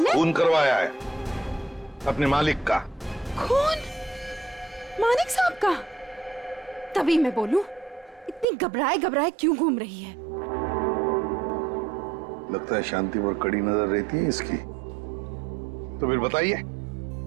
ने? खून करवाया है अपने मालिक का। खून? मानिक साहब का? तभी मैं बोलूं, इतनी घबराए घबराए क्यों घूम रही है? लगता है शांति पर कड़ी नजर रहती है इसकी। तो फिर बताइए,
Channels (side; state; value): left; drops out; at 8.5 s